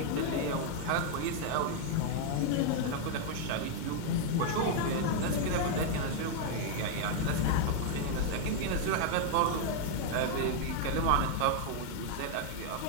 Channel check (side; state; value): both; different; correlation 0.00